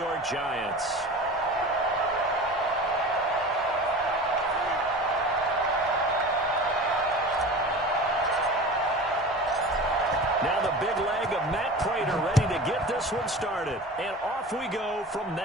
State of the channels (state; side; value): normal; both; correlation 0.35